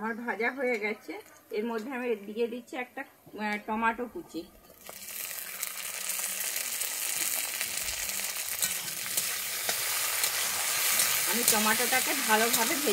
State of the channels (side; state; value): both; identical; correlation 1.00